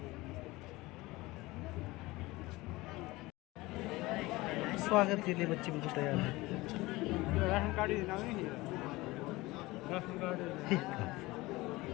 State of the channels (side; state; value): right; quieter; 20.6 dB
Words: स्वागत के लिए बच्चे बिल्कुल तैयार हैं। राशन कार्ड नहीं राशन कार्ड